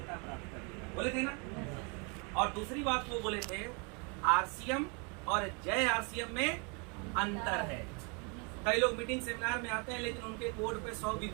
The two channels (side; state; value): left; quieter; 33.4 dB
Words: प्राप्त कर लेगा, बोले थे ना। और दूसरी बात वो बोले थे आरसीएम और जय आरसीएम में अंतर है। कई लोग मीटिंग सेमिनार में आते हैं लेकिन उनके कोड पे 100